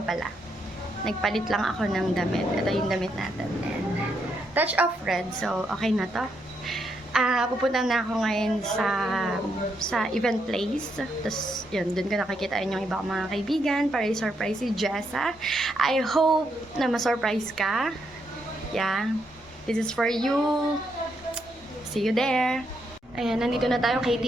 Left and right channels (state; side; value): normal; both; correlation 0.78